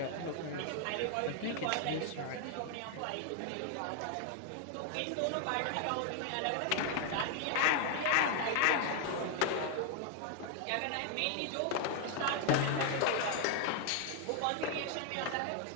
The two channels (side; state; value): both; different; correlation 0.00